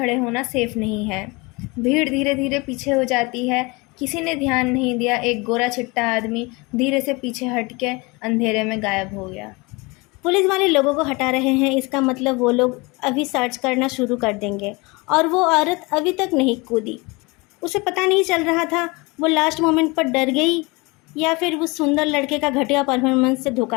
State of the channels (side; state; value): right; quieter; 25.9 dB